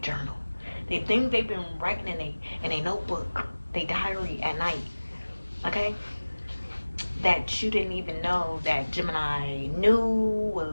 The things they've been writing in a notebook, their diary at night. Okay? That you didn't even know that Gemini knew,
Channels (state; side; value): inverted; both; correlation -1.00